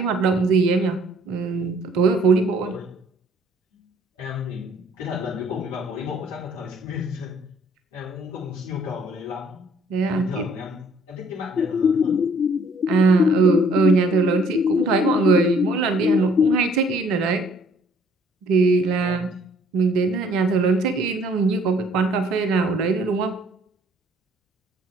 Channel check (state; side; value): normal; both; correlation 0.60